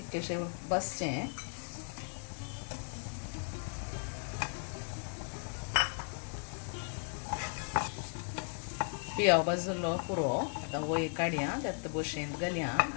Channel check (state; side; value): silent; right; 54 dB below the other